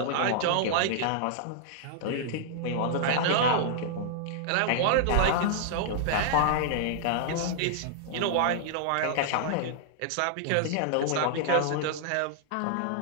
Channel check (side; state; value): both; different; correlation -0.01